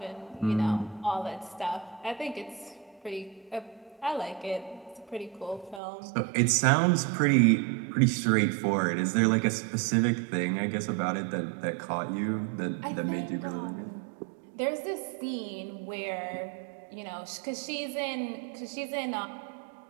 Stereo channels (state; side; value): drops out; left; at 5.8 s